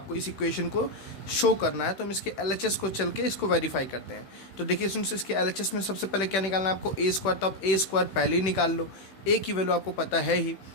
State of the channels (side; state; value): right; late; 16 ms